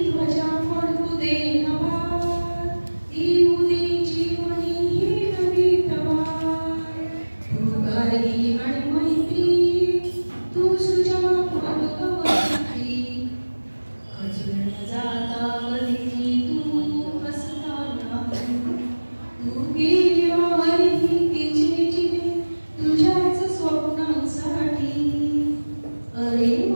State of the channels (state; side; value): inverted; both; correlation -1.00